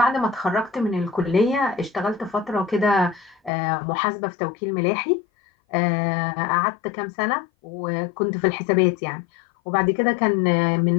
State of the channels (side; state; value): right; drops out; at 3.5 s